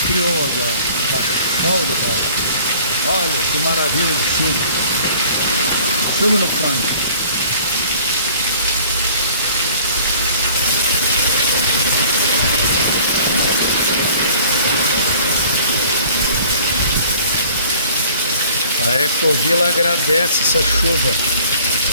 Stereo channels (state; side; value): inverted; both; correlation -0.51